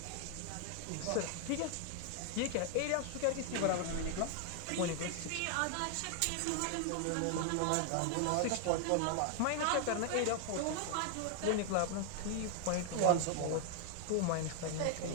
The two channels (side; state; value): both; different; correlation 0.00